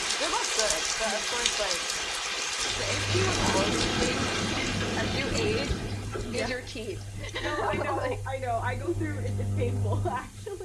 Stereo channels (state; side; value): identical; both; correlation 1.00